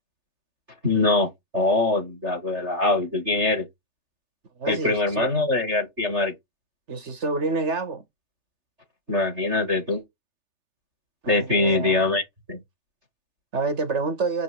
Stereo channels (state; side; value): late; left; 3.4 ms